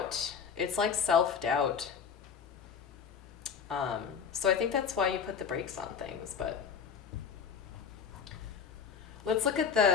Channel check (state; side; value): quieter; right; 6.6 dB